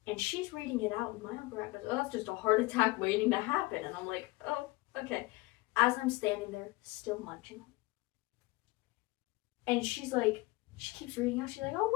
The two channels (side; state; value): right; quieter; 21.4 dB